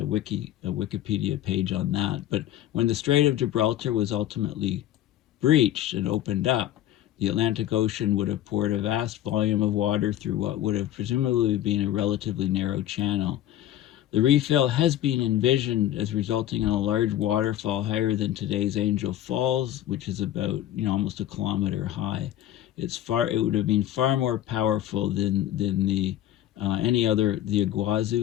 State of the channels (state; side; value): quieter; right; 12.5 dB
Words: Wikipedia page on that. But when the Strait of Gibraltar was ultimately breached and opened up, the Atlantic Ocean would have poured a vast volume of water through what would have presumably been a relatively narrow channel. The refill has been envisioned as resulting in a large waterfall higher than today's Angel Falls, which is about, you know, almost a kilometer high. It would have been far more powerful than the any other, the